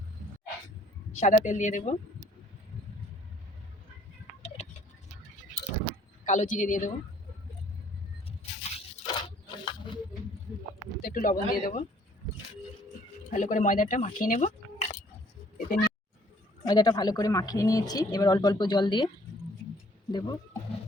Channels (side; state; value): both; normal; correlation 0.60